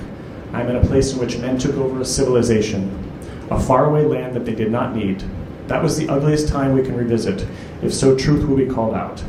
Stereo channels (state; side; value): identical; both; correlation 1.00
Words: I'm in a place in which men took over a civilization, a faraway land that they did not need. That was the ugliest time we can revisit, if so truth will be called out.